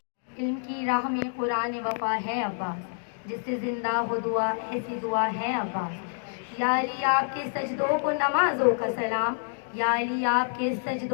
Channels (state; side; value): silent; right; digital silence